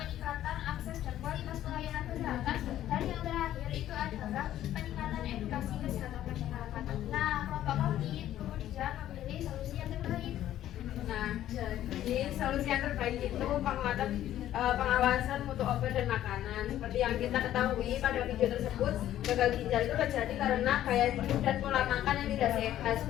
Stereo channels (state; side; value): quieter; right; 12.4 dB